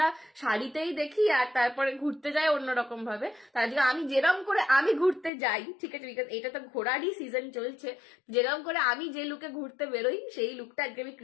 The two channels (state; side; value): drops out; right; at 5.3 s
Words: শাড়িতেই দেখি আর তারপরে ঘুরতে যাই অন্যরকম ভাবে। তার আজকে আমি যেরকম করে আমি ঘুরতে যাই, ঠিক আছে, বিকজ এটা তো ঘোরারই সিজন চলছে, যেরকম করে আমি যে লুকে ঘুরতে বেরোই সেই লুকটা আজকে আমি